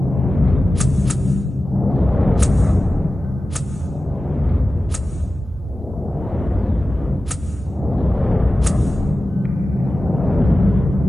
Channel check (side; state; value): both; normal; correlation 0.95